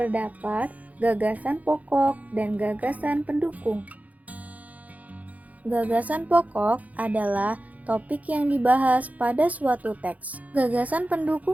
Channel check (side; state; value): left; late; 0.074 ms